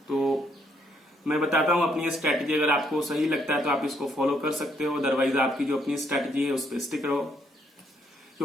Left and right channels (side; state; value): both; normal; correlation 0.72